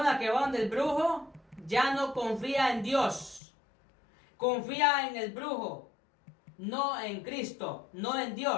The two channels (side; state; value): right; drops out; at 3.4 s